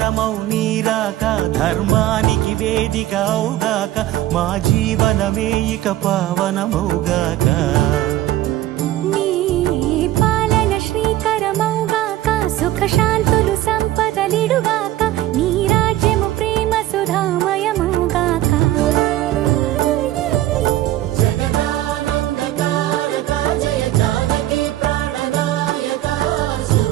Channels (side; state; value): left; quieter; 14.5 dB